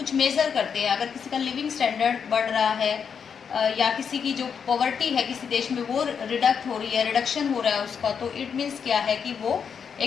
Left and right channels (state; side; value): quieter; right; 6.8 dB